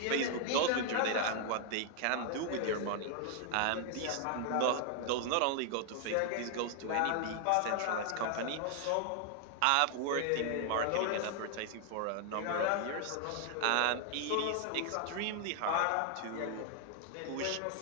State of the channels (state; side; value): different; both; correlation 0.00